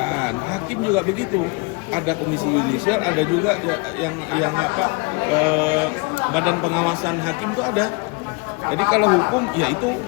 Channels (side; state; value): right; quieter; 29.5 dB